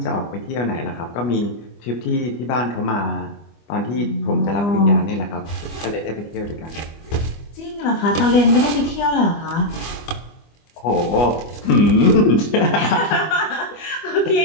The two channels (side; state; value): right; late; 25 ms